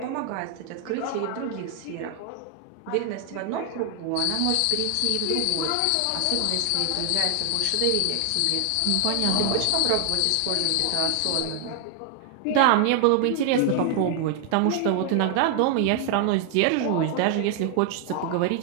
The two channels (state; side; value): different; both; correlation 0.00